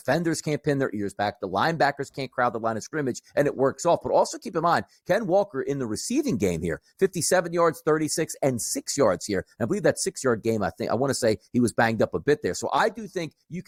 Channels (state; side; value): identical; both; correlation 1.00